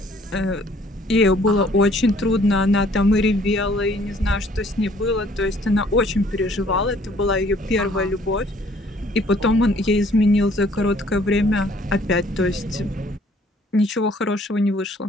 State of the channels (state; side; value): normal; both; correlation 0.59